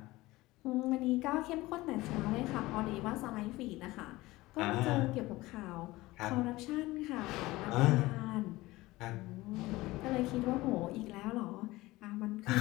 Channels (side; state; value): right; quieter; 19.3 dB